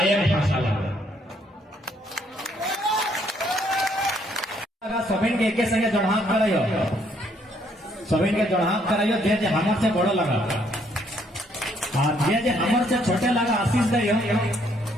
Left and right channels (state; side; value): normal; both; correlation 0.68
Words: भाषा लगा सबिन के एक संगे जड़हात कराइयो सबिन के जड़हात कराइयो जे हमर से बड़ो लगा जे हमर से छोटे लगा आशीष दियो